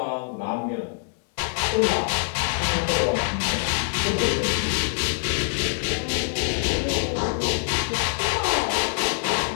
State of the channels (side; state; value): right; silent; digital silence